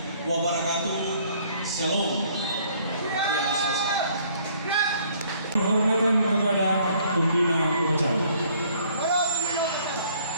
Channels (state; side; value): inverted; both; correlation -0.61